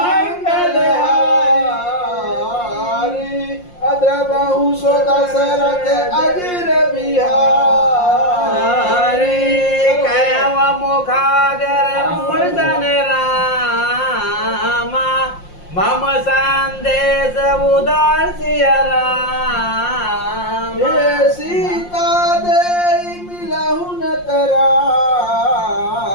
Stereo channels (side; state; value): right; late; 5.7 ms